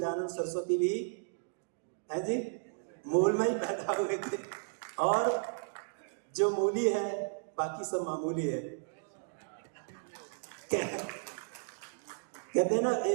सरस्वती भी है जी मूल में ही पैदा हुए थे, और जो मूली है बाकी सब मामूली है। कहते हैं ना,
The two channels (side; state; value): left; silent; digital silence